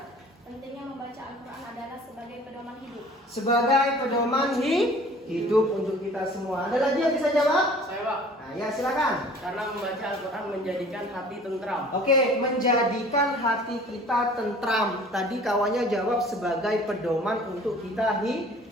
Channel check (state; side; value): normal; both; correlation 0.48